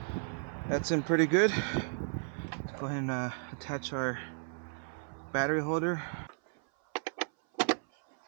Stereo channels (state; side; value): silent; left; 55 dB below the other